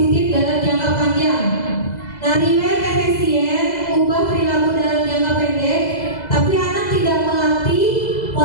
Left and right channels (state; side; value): late; right; 2.0 ms